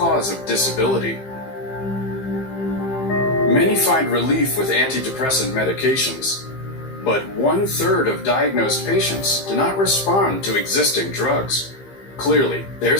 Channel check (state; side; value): late; right; 15 ms